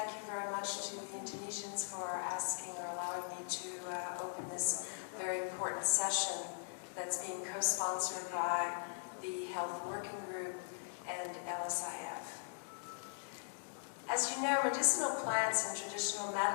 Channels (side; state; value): right; silent; digital silence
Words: you very much to the Indonesians for asking or allowing me to open this very important session that's being co-sponsored by the Health Working Group and LSIF. As you know, medicinal plants and traditional